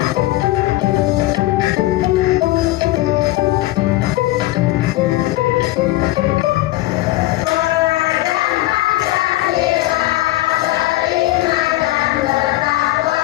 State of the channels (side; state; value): right; quieter; 17.2 dB